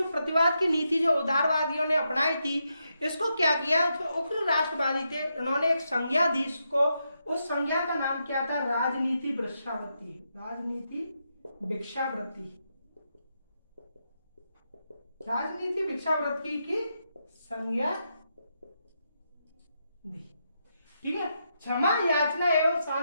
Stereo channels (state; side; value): inverted; both; correlation -0.83